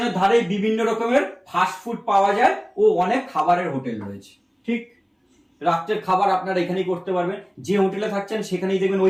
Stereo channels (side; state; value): both; identical; correlation 1.00